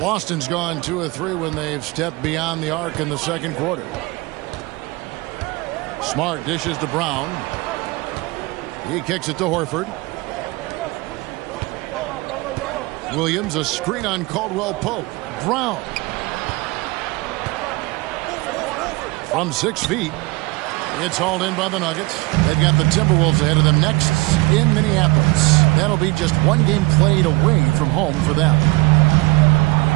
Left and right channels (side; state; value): left; quieter; 24.1 dB